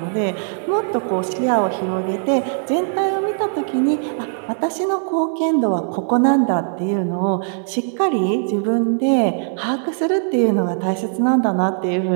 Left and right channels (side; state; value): left; silent; digital silence